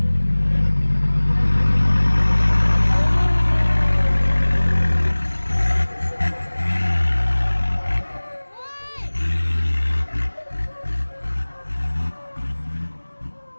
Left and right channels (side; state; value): both; inverted; correlation -1.00